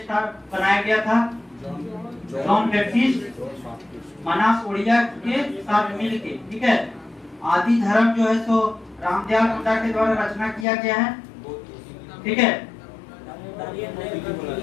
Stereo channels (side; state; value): right; drops out; at 10.7 s